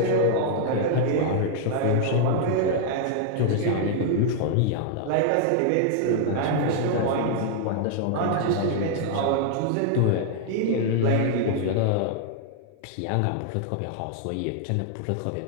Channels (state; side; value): different; both; correlation -0.01